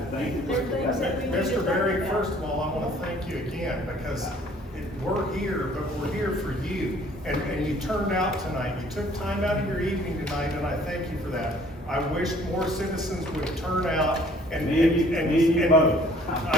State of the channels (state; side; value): normal; both; correlation 0.57